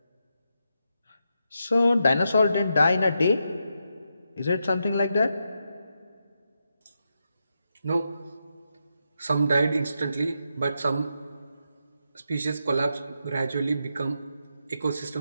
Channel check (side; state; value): both; inverted; correlation -0.85